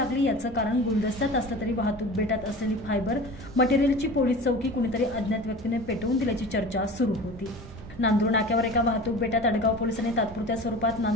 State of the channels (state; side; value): normal; both; correlation 0.36